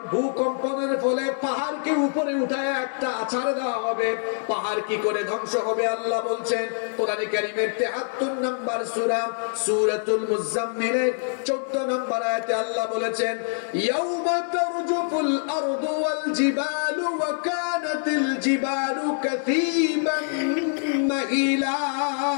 ভূকম্পনের ফলে পাহাড়কে উপরে উঠায় একটা আছাড় দেওয়া হবে, পাহাড় কি করে ধ্বংস হবে আল্লাহ বলছেন কোরআনে কারীমের ৭৩ নম্বর সূরা সূরাতুল মুজাম্মিলের ১৪ নম্বর আয়াতে আল্লাহ বলেছেন, ইয়াউমা তারজুফুল আরদু ওয়াল জিবালু ওয়া কানাতিল জিবালু কাসীবান মাহিলা।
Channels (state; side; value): silent; right; digital silence